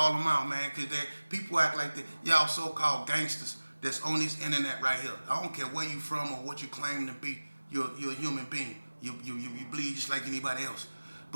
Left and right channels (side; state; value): both; inverted; correlation -1.00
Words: them out, man, because people act like y'all so-called gangsters that's on this internet right here. I don't care where you from or what you claim to be. You're a human being. You bleed just like anybody else.